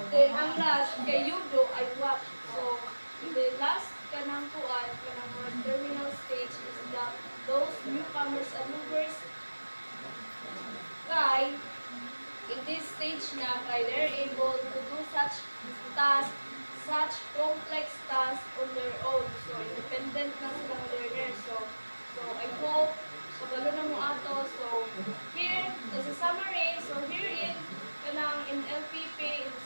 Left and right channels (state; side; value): inverted; both; correlation -1.00